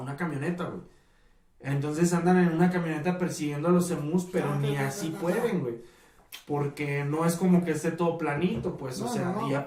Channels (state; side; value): identical; both; correlation 1.00